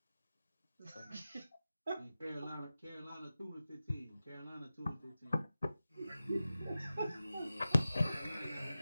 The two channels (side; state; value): both; inverted; correlation -0.94